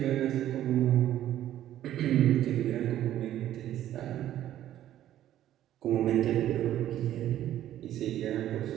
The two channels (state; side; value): quieter; left; 12.3 dB